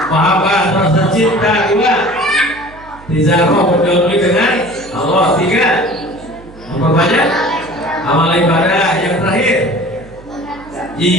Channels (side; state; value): right; noise; hum, 21 dB below the sound